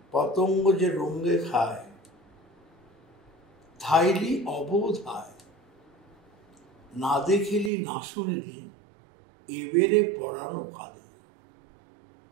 পতঙ্গ যে রঙে খায়, ধাইলি অবোধায়, না দেখিলি না শুনিলি, এবেরে পড়ানো কাঁদে।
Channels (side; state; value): left; drops out; at 7.7 s